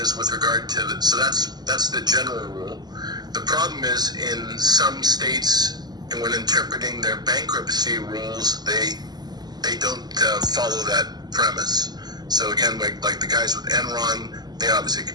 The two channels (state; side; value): late; left; 0.20 ms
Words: with regard to so that's the general rule. The problem is in some states, and when interpreting their bankruptcy rules, they don't follow that premise. So again, like the guys with Enron, they obviously